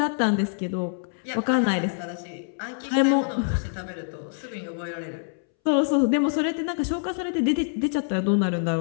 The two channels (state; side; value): silent; right; 61 dB below the other